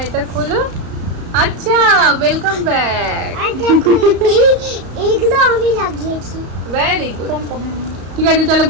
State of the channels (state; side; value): late; left; 34 ms